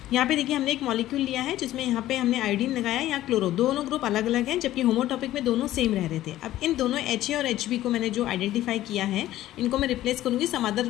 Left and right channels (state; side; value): quieter; right; 14.3 dB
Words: यहाँ पे देखिए हमने एक मॉलिक्यूल लिया है जिसमें यहाँ पे हमने आयोडीन लगाया या क्लोरो, दोनों ग्रुप अलग अलग हैं जबकि होमोटॉपिक में दोनों सेम रह रहे थे। अब इन दोनों HA और HB को मैंने जो आइडेंटिफाई किया है इनको मैं रिप्लेस करूँगी सम अदर